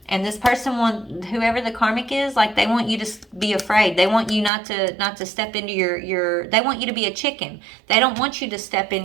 And this person whoever the karmic is, like, they want you to be afraid. They want you not to step into your they want you to be a chicken. They don't want you to step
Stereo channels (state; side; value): drops out; left; at 4.5 s